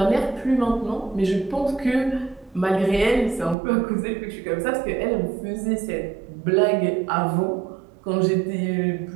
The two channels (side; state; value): left; drops out; at 3.6 s